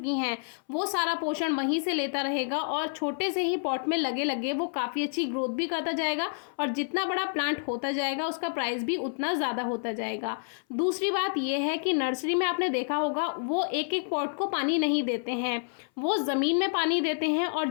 हैं वो सारा पोषण वहीं से लेता रहेगा और छोटे से ही पॉट में लगे लगे वो काफ़ी अच्छी ग्रोथ भी करता जाएगा। और जितना बड़ा प्लांट होता जाएगा उसका प्राइस भी उतना ज़्यादा होता जाएगा। दूसरी बात यह है कि नर्सरी में आपने देखा होगा वो एक एक पॉट को पानी नहीं देते हैं, वो ज़मीन में पानी देते हैं।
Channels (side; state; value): right; silent; 59 dB below the other